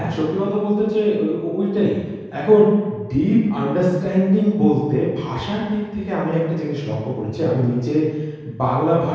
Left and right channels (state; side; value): identical; both; correlation 1.00